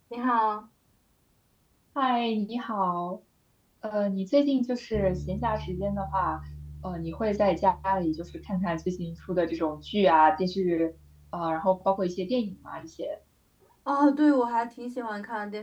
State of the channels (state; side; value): identical; both; correlation 1.00